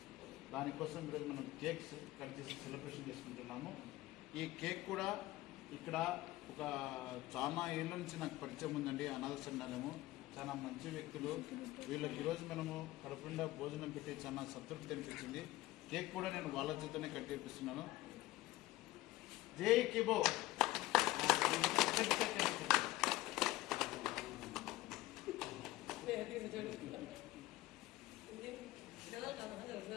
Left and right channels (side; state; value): right; quieter; 17.5 dB